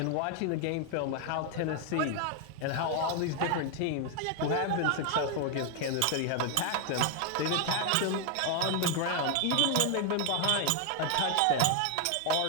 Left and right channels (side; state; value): both; different; correlation 0.01